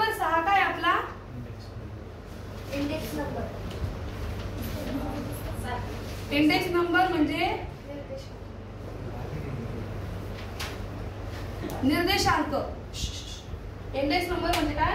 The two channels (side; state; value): both; identical; correlation 1.00